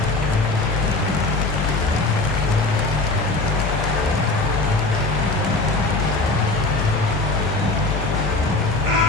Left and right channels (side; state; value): right; quieter; 3.2 dB